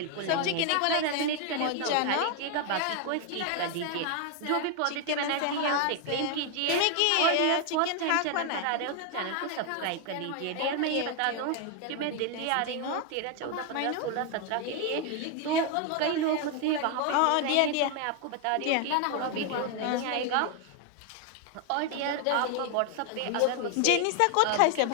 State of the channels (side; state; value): both; different; correlation 0.00